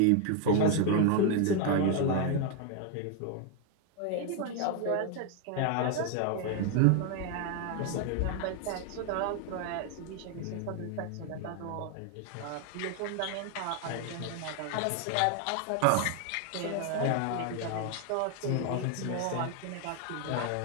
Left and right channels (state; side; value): different; both; correlation 0.01